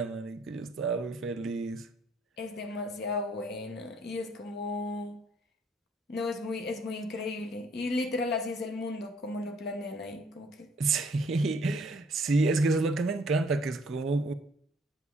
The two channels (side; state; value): both; normal; correlation 0.62